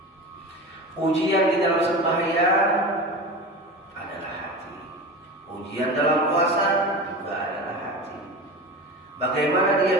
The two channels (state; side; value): normal; both; correlation 0.29